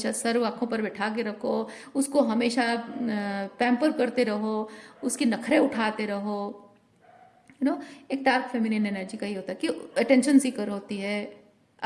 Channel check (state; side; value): identical; both; correlation 1.00